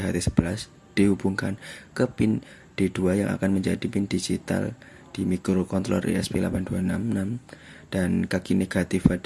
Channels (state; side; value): identical; both; correlation 1.00